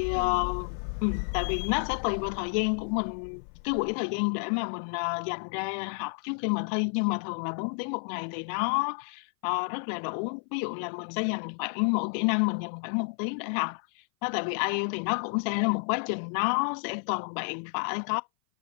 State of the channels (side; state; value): right; silent; 56 dB below the other